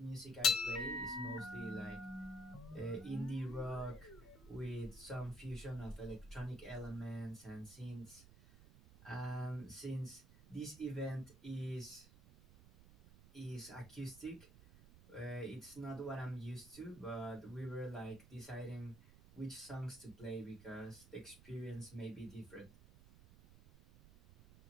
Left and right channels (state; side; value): noise; right; rumble, 19 dB below the sound